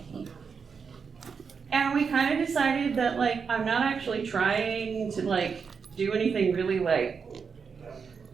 And we kind of decided that I'm not actually trying to do anything really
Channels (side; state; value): left; quieter; 5.8 dB